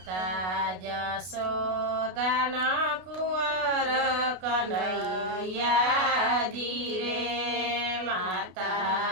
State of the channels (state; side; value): late; left; 32 ms